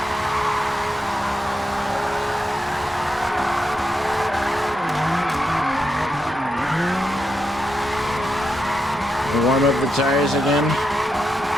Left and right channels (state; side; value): normal; both; correlation 0.85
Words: Warm up the tires again.